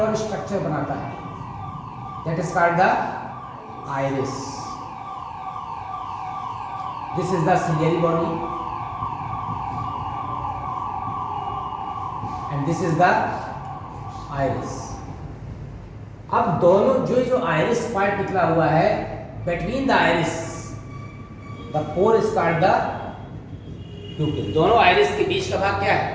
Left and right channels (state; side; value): identical; both; correlation 1.00